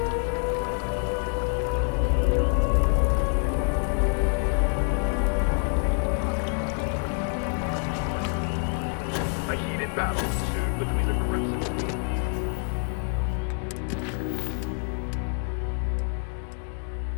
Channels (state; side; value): quieter; right; 39.9 dB